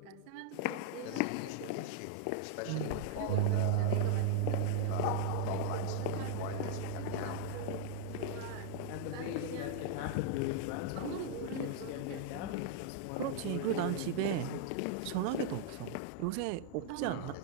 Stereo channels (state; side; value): different; both; correlation -0.01